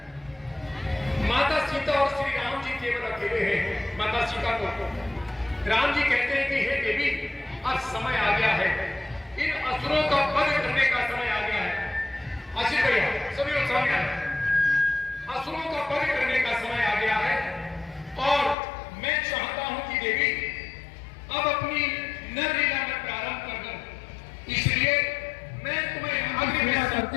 माता सीता और श्री राम जी केवल अकेले हैं। माता सीता को राम जी कहते हैं कि हे देवी, अब समय आ गया है, इन असुरों का वध करने का समय आ गया है। आशीष भैया, सभी लोग सामने आए। असुरों का वध करने का समय आ गया है और मैं चाहता हूं कि देवी अब अपनी नरलीला में प्रारंभ कर दूं, इसलिए मैं तुम्हें अग्नि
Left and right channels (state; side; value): drops out; right; at 18.6 s